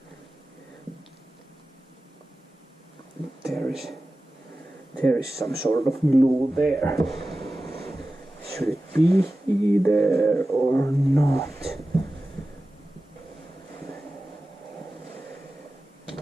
There is some sort of glue there. Should it be there or not?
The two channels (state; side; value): normal; both; correlation 0.95